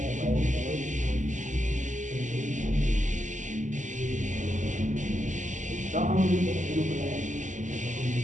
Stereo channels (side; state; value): left; late; 0.36 ms